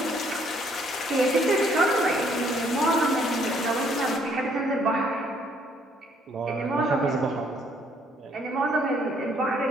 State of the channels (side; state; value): both; normal; correlation 0.66